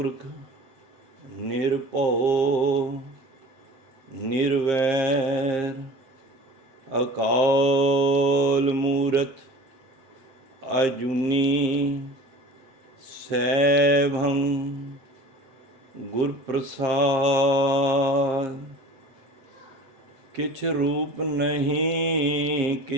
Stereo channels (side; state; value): left; late; 7.5 ms